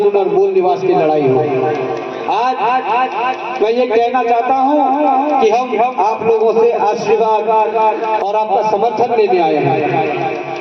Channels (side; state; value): both; identical; correlation 1.00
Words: और मूल निवास की लड़ाई हो। आज मैं ये कहना चाहता हूँ कि हम आप लोगों से आशीर्वाद और आपका समर्थन लेने आए